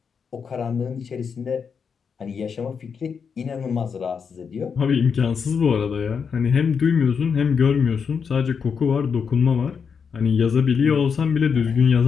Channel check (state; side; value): quieter; right; 6.3 dB